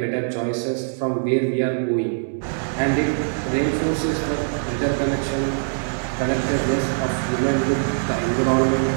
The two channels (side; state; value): left; silent; digital silence